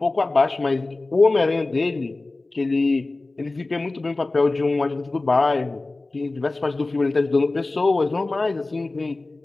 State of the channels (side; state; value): right; quieter; 3.2 dB